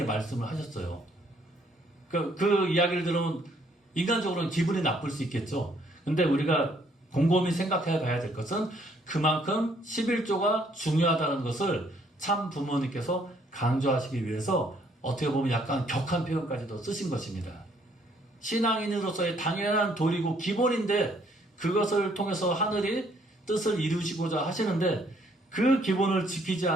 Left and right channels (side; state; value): both; normal; correlation 0.66